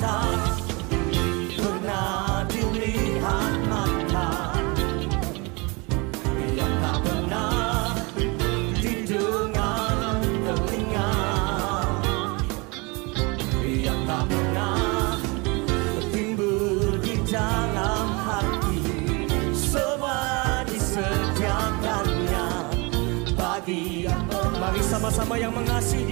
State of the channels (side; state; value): left; quieter; 28.0 dB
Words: pernah dilihat mata, yang tak pernah didengar telinga, yang tak pernah timbul di dalam hati, semua disediakannya bagi yang mari sama-sama yang mengasihi.